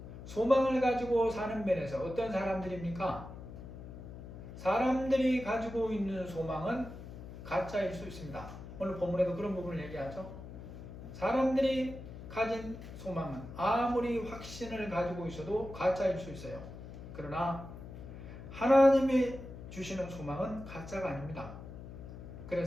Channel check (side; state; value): left; noise; hum, 12 dB below the sound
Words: 소망을 가지고 사는 면에서 어떤 사람들입니까? 사람들이 가지고 있는 소망은 가짜일 수 있습니다. 오늘 본문에도 그런 부분을 얘기하죠. 사람들이 가진 소망은 아무리 확신을 가지고 있어도 가짜일 수 있어요. 그러나 하나님이 주시는 소망은 가짜가 아닙니다.